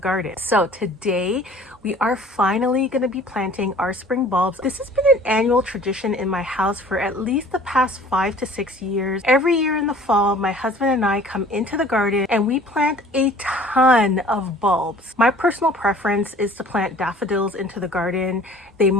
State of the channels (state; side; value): normal; both; correlation 0.50